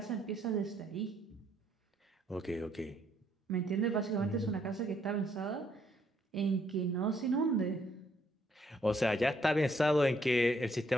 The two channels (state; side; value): normal; both; correlation 0.70